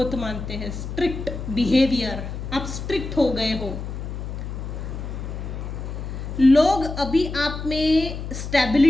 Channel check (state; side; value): noise; left; hum, 7 dB below the sound